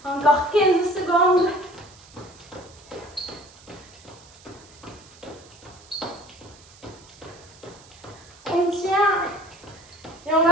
Encore 15 secondes. On tient. Et on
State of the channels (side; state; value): right; noise; hiss, 23 dB below the sound